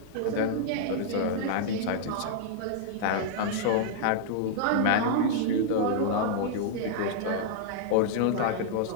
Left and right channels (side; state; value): both; different; correlation -0.01